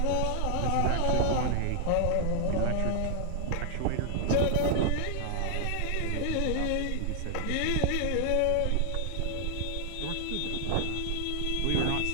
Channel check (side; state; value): both; different; correlation 0.00